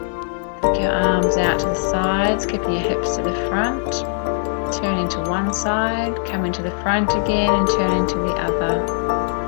Take your arms out to the sides, keeping your hips to the front. Turning to one side, coming to the front again and turning to the other.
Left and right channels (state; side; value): silent; right; digital silence